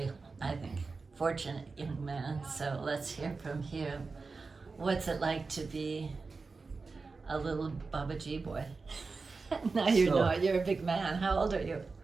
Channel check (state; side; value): quieter; left; 4.2 dB